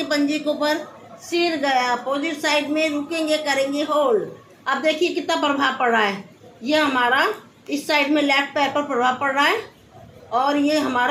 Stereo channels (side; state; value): both; identical; correlation 1.00